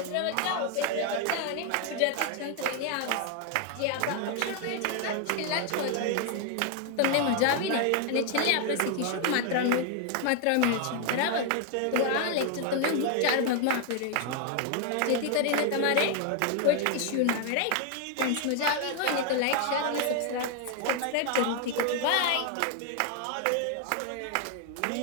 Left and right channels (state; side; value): different; both; correlation 0.00